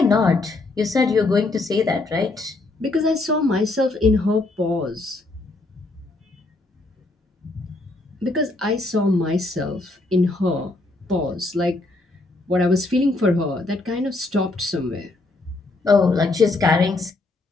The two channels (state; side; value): quieter; right; 3.1 dB